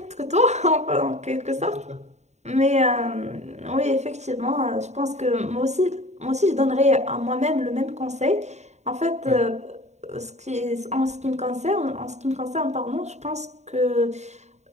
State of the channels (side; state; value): left; late; 0.33 ms